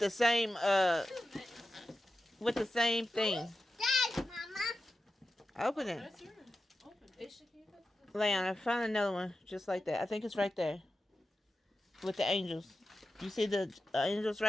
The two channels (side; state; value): both; normal; correlation 0.92